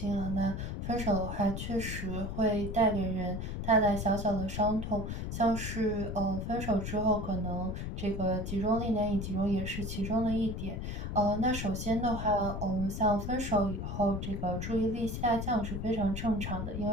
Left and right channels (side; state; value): left; noise; rumble, 4 dB below the sound